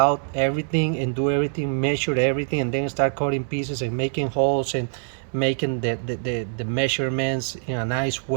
everything, and do everything, measure everything, and then start cutting pieces and making holes and making the measurements in a nice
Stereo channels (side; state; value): left; silent; 63 dB below the other